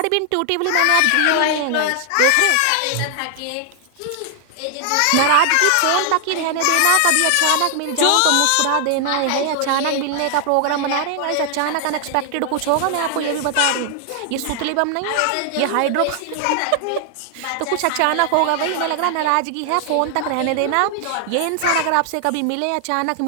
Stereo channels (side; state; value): both; different; correlation 0.00